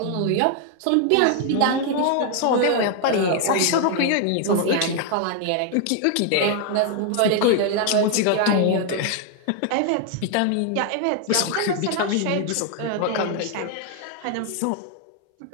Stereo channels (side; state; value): both; different; correlation 0.00